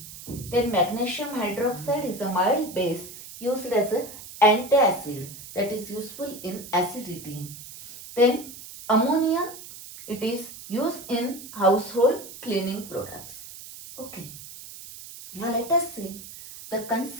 Then magnesium hydroxide is a mild base used as an antacid that is useful in acidity. Then ammonia, it is used in household cleaning products. Okay. Now let us see the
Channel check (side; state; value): right; noise; hiss, 14 dB below the sound